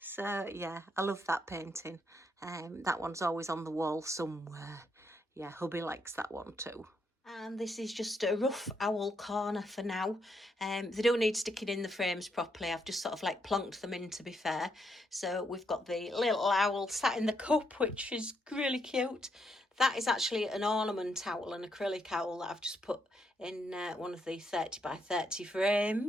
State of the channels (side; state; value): both; normal; correlation 0.77